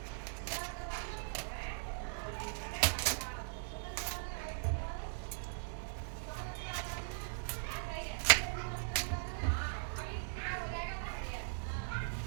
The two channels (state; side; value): silent; left; digital silence